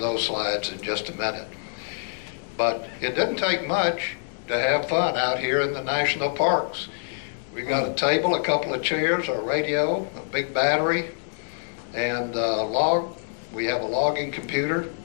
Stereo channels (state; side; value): silent; right; digital silence